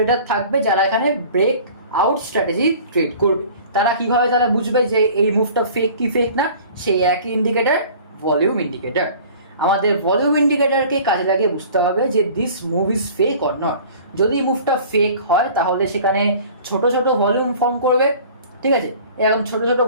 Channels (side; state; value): both; inverted; correlation -0.46